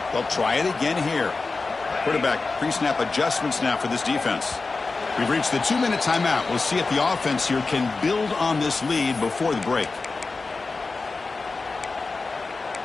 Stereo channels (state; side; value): quieter; right; 3.9 dB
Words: They'll try it again here. Quarterback pre-snap adjustments now for this defense. We've reached the 2-minute timeout. We'll see if the offense here can build on this lead before the break.